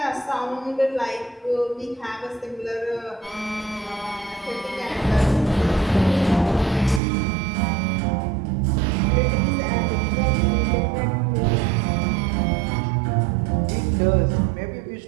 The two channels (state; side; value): drops out; left; at 7.0 s